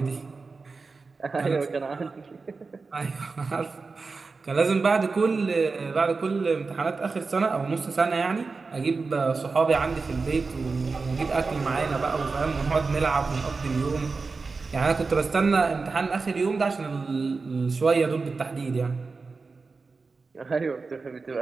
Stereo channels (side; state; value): left; quieter; 4.2 dB